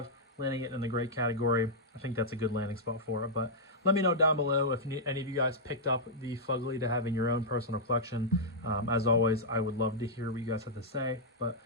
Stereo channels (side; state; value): both; normal; correlation -0.08